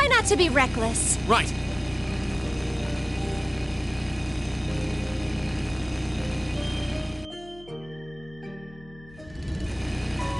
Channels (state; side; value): noise; left; hum, 21 dB below the sound